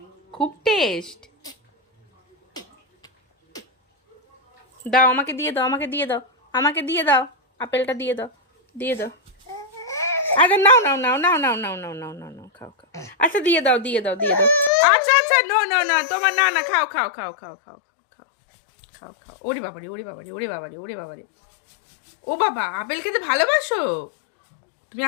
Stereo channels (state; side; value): drops out; right; at 14.7 s